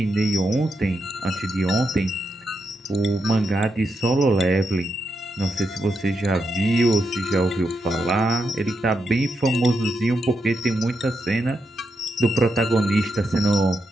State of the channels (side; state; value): both; normal; correlation 0.84